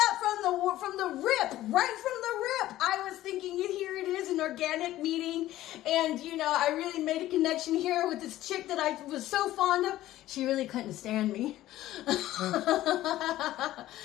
from the rip, right from the rip. I was thinking, here it is, an organic meeting, and you know, I really made a connection here with this chick that I was so fond of. She really couldn't stand me. I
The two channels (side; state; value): right; quieter; 14.7 dB